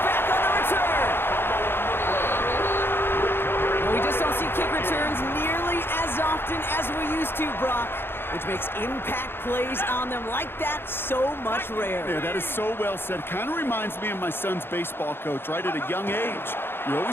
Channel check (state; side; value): late; right; 0.11 ms